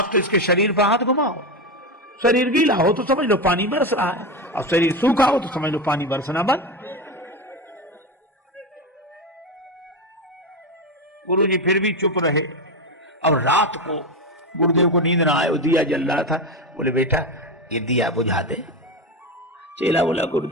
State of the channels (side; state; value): both; normal; correlation 0.16